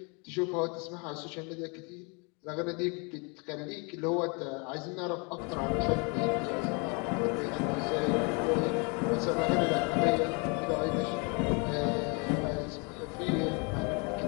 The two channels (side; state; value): right; quieter; 32.6 dB